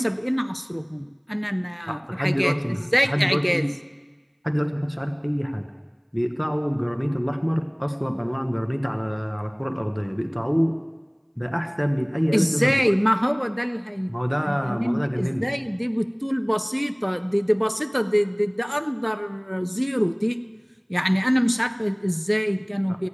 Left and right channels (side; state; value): both; identical; correlation 1.00